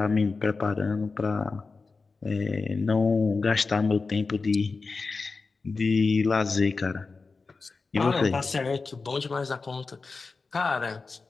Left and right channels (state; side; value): quieter; right; 4.2 dB